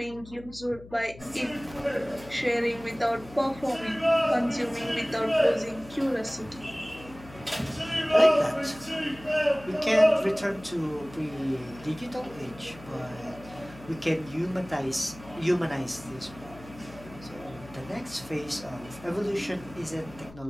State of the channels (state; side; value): noise; left; hum, 18 dB below the sound